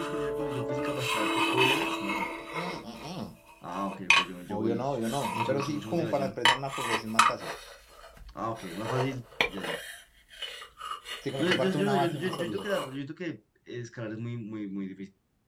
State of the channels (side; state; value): both; identical; correlation 1.00